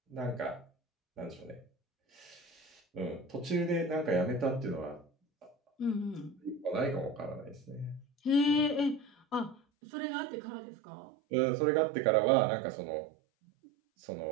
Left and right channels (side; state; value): left; drops out; at 9.6 s